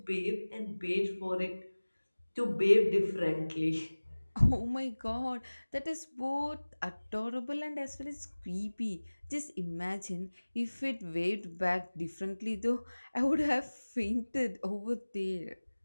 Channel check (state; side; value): inverted; both; correlation -1.00